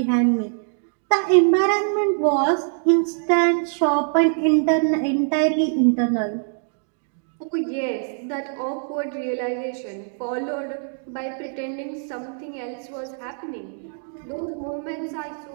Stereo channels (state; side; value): silent; left; digital silence